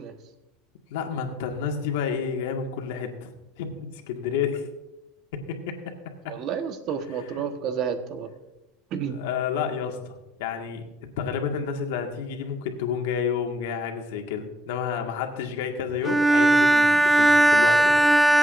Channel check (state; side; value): normal; both; correlation 0.70